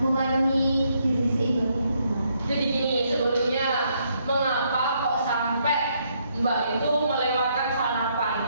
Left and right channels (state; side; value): inverted; both; correlation -0.73